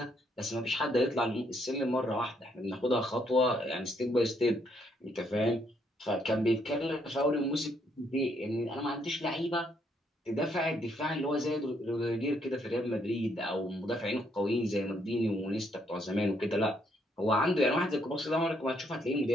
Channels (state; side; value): normal; both; correlation 0.72